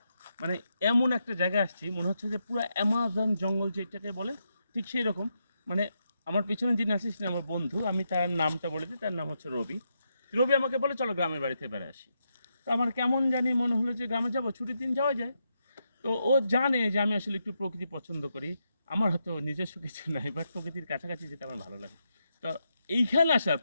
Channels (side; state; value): both; inverted; correlation -0.83